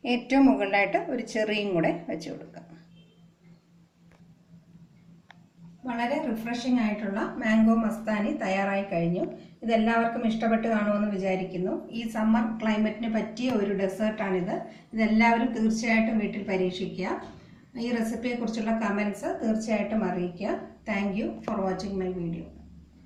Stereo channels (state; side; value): identical; both; correlation 1.00